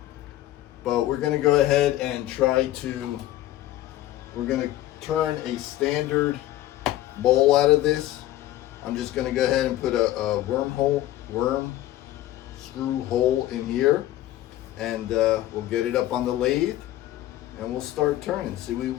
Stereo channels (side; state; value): right; quieter; 14.6 dB